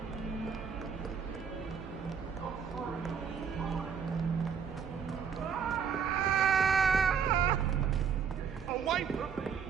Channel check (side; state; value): left; quieter; 7.0 dB